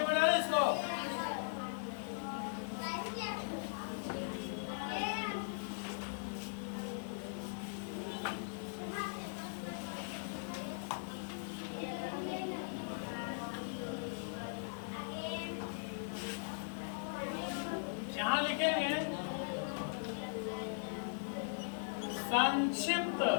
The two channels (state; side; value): silent; right; digital silence